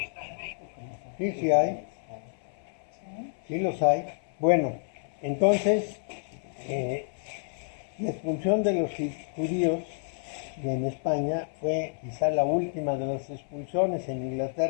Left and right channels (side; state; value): right; silent; 58 dB below the other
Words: en México. Sí, sí hay, sí los hay. Bueno, entonces, la expulsión de los judíos en España fue quizá la última de las expulsiones. En